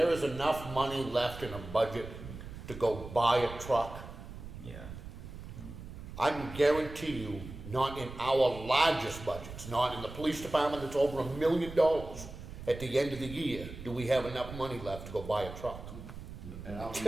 is enough money left in a budget to go buy a truck, yeah. I can guarantee you, not in our largest budgets, not in the police department that's over $1 million, at the end of the year, do we have enough money left to go buy a truck? And I'll be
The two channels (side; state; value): right; noise; rumble, 12 dB below the sound